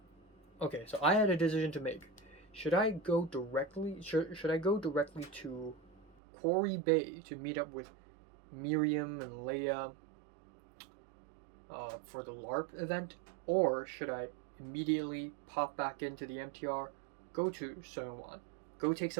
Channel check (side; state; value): left; drops out; at 6.2 s